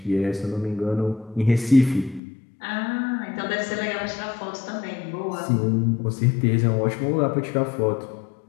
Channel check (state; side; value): drops out; right; at 2.2 s